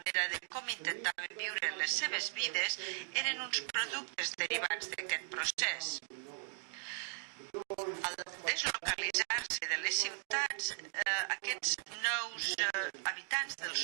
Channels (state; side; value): silent; left; 52 dB below the other